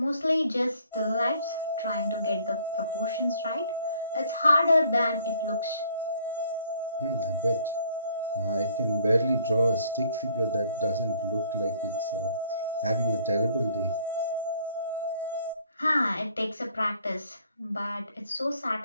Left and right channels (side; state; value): both; inverted; correlation -0.61